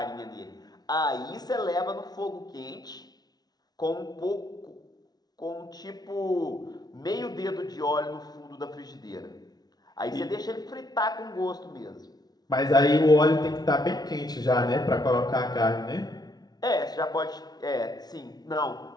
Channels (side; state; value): right; late; 0.19 ms